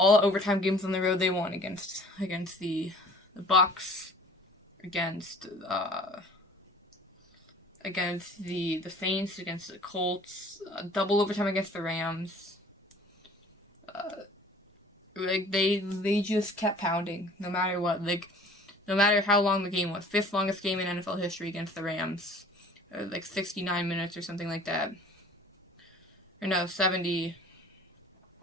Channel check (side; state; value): both; normal; correlation 0.49